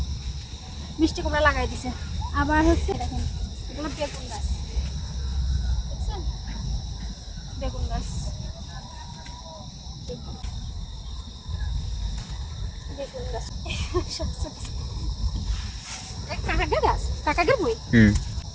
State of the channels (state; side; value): identical; both; correlation 1.00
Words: কুমড়া লাগাই দিছে। আবার হচ্ছে দেখেন এগুলো বেগুন গাছ, দেখছেন, বেগুন গাছ, কাকাগের বই